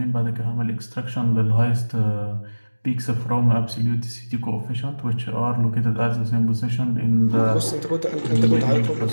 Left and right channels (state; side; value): inverted; both; correlation -1.00